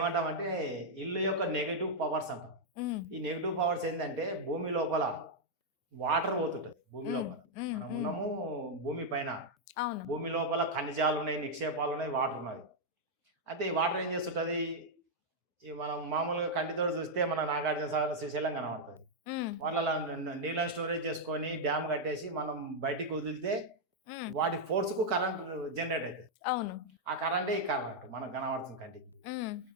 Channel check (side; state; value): both; normal; correlation -0.03